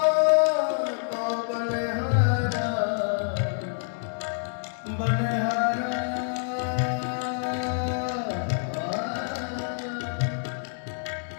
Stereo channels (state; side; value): silent; right; 60 dB below the other